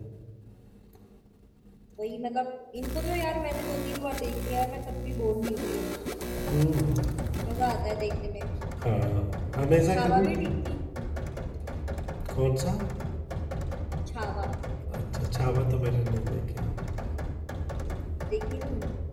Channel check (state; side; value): identical; both; correlation 1.00